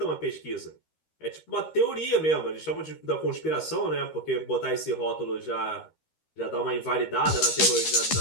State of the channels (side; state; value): right; late; 13 ms